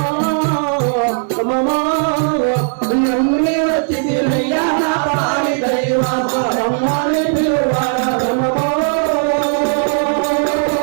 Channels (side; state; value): left; silent; digital silence